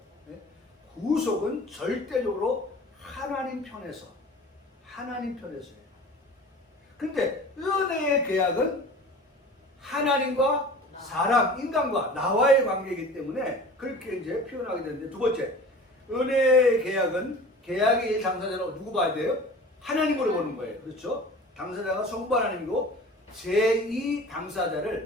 네? 구속은 절대적으로 하나님 편에서예요. 그런데 은혜의 계약은 하나님과 사람, 인간과 나와의 관계이기 때문에 그렇게 이제 표현하게 되는데, 두 번째, 은혜의 계약은 계약의 당사자로 누구 봐야 돼요? 하나님으로 보는 거예요. 그렇죠? 당사자가 성부 하나님이고, 제2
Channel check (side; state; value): both; normal; correlation 0.41